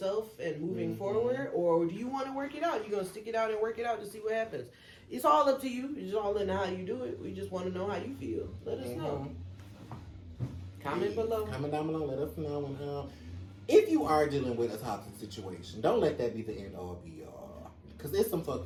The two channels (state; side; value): identical; both; correlation 1.00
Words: and moving forward? Or do you want to work it out? You're going to stick it out and work it out to see what happens? It's all up to you. It's all in how you do it. We just want to know how you feel. Let us know. Comment below. Comment down below. Let us know. And, if you are dealing with a toxic situation, don't let that be the end all be all. Because there's some